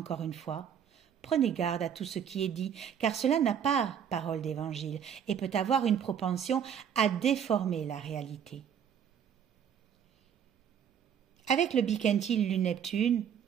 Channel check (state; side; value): quieter; left; 8.3 dB